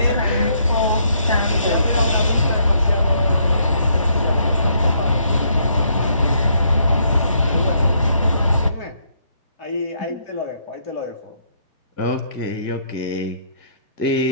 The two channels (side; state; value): both; inverted; correlation -0.71